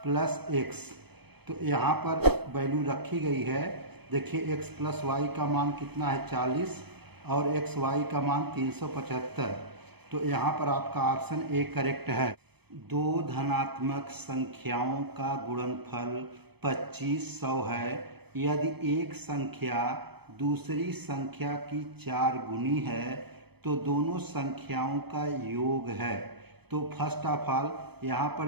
प्लस x। तो यहाँ पर वैल्यू रखी गई है। देखिए x प्लस वाई का मान कितना है? 40, और एक्स वाई का मान 375। तो यहाँ पर आपका ऑप्शन ए करेक्ट है। दो धनात्मक संख्याओं का गुणनफल 2500 है। यदि एक संख्या दूसरी संख्या की 4 गुनी है तो दोनों संख्याओं का योग है। तो फर्स्ट ऑफ ऑल यहाँ पर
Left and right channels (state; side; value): late; left; 0.97 ms